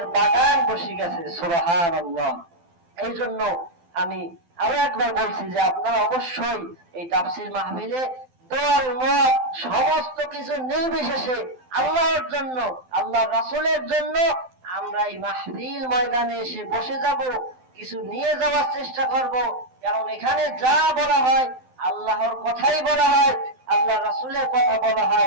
বাগান বসে গেছে, সুবহানাল্লাহ। এই জন্য আমি আরো একবার বলছি যে আপনারা অবশ্যই এই তাফসীর মাহফিলে দল মত সমস্ত কিছু নির্বিশেষে আল্লাহর জন্য, আল্লাহর রাসূলের জন্য আমরা এই মাহফিল ময়দানে এসে বসে যাব, কিছু নিয়ে যাওয়ার চেষ্টা করব। কারণ এখানে যা বলা হয় আল্লাহর কথাই বলা হয়, আল্লাহ রাসূলের কথা বলা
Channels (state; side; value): late; left; 12 ms